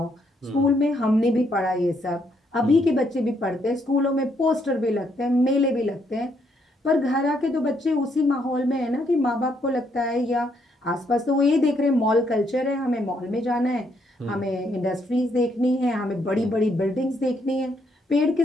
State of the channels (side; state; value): both; normal; correlation 0.73